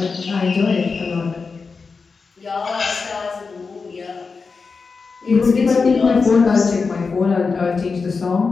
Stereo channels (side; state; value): right; quieter; 4.7 dB